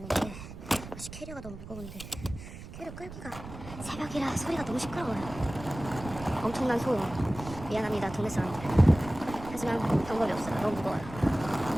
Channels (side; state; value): right; noise; rumble, 12 dB below the sound